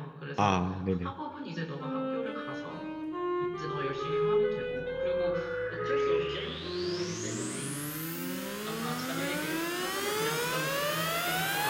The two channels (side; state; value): both; identical; correlation 1.00